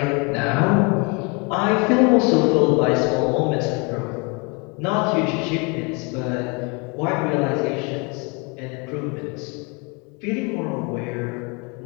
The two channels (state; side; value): quieter; right; 30.9 dB